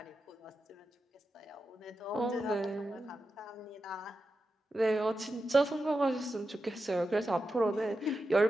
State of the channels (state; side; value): normal; both; correlation 0.90